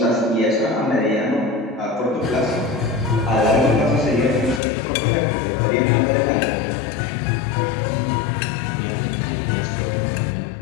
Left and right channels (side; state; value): right; drops out; at 4.6 s